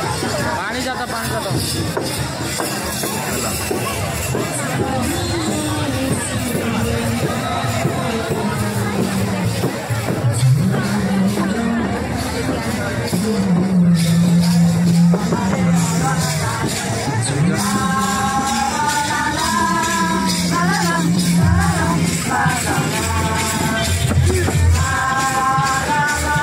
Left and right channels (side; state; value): both; identical; correlation 1.00